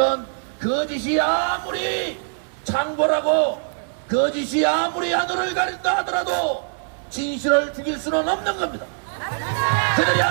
거짓이 아무리 창궐하고 거짓이 아무리 하늘을 가린다 하더라도 진실을 죽일 수는 없는 겁니다. 그들이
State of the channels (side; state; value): left; silent; 64 dB below the other